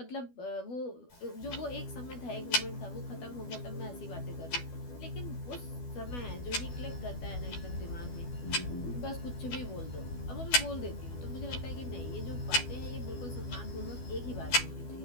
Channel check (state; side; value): late; right; 12 ms